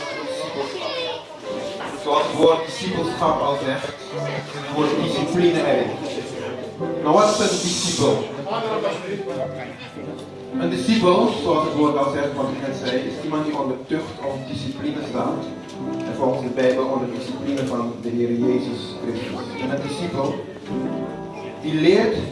discipelschap. Zoals het woord discipelschap al zegt, zit het woord discipline erin. Maar wat is een discipel? Een discipel, zoals het woord al zegt, wat ik net zei, is iemand die onder tucht of discipline staat. En volgens de Bijbel onder discipline van de Heer Jezus Christus. En een discipel die leert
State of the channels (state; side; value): identical; both; correlation 1.00